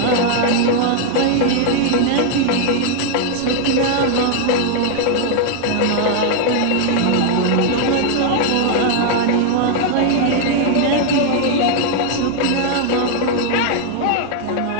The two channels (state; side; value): different; both; correlation 0.00